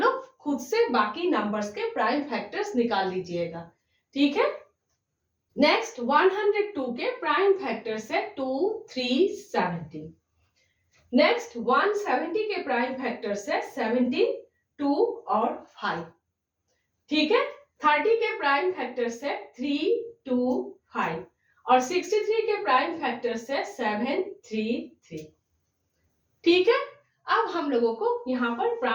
खुद से बाकी नंबर्स के प्राइम फैक्टर्स निकाल लीजिएगा। ठीक है, नेक्स्ट 102 के प्राइम फैक्टर्स है 2, 3, 17। नेक्स्ट 170 के प्राइम फैक्टर्स है 17, 2 और 5। ठीक है, 30 के प्राइम फैक्टर्स है 3, 2, 5 और 63 के प्राइम फैक्टर्स है 7, 3, 3। ठीक है, अब हम लोगों को यहां पर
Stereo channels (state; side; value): identical; both; correlation 1.00